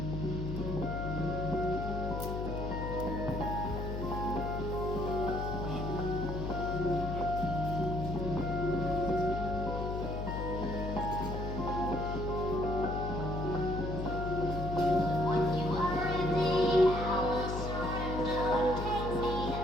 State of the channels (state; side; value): noise; left; hum, 4 dB below the sound